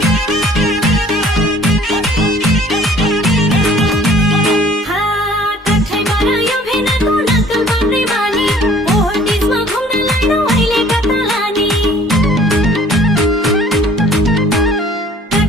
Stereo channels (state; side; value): normal; both; correlation 0.53